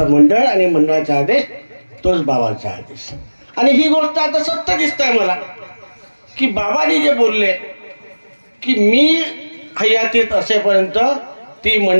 मंडळ आणि मंडळाचा आदेश तोच बाबाचा आदेश. आणि ही गोष्ट आता सत्य दिसत आहे मला की बाबांनी जे बोलले की मी हयातीत असेपर्यंत ती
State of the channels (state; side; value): inverted; both; correlation -1.00